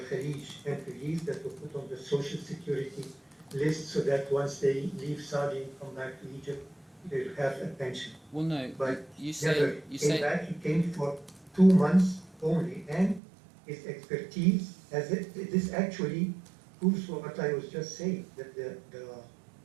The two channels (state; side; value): drops out; left; at 13.2 s